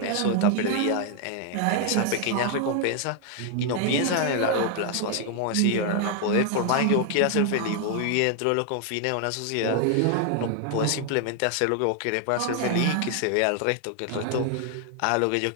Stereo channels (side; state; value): both; different; correlation 0.00